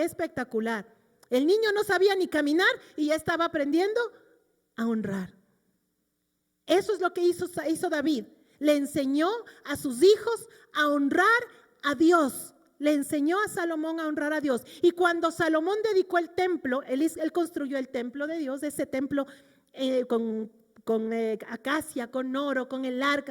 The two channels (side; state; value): both; identical; correlation 1.00